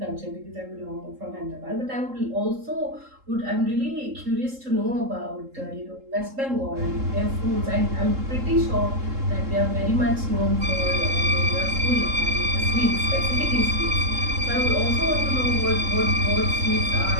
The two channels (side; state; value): left; late; 3.7 ms